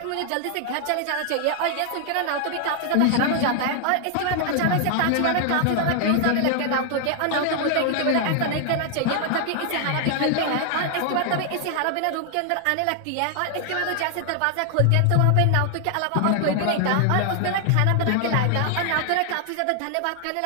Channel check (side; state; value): both; different; correlation 0.00